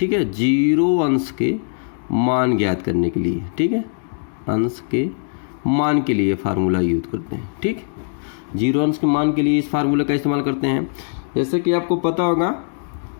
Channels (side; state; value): right; silent; digital silence